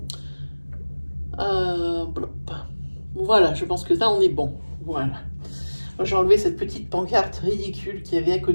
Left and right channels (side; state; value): both; inverted; correlation -1.00